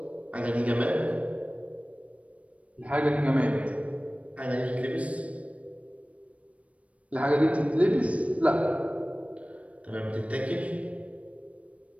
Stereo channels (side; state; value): left; late; 0.065 ms